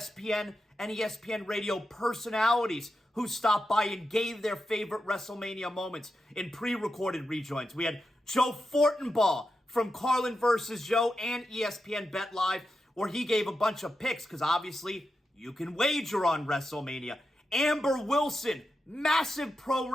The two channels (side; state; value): both; normal; correlation 0.89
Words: and ESPN radio personalities who stopped by and gave their favorite WrestleMania moments in pre-recorded rejoins. We had Joe Fortenbaugh from Carlin vs. Joe and ESPN Bet Live, where he gave a bunch of picks, because obviously you can wager on WrestleMania. Amber Wilson, massive pro